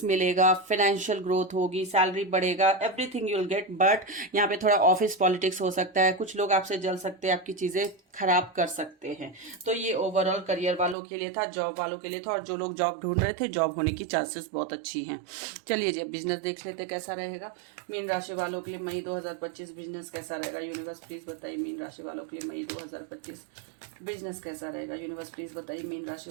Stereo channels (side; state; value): left; drops out; at 11.0 s